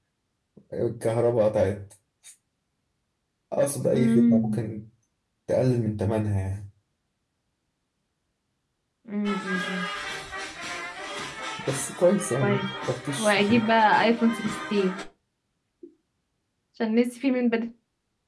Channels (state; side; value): identical; both; correlation 1.00